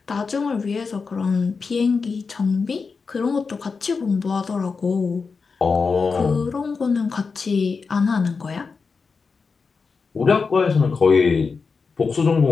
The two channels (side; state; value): right; quieter; 4.9 dB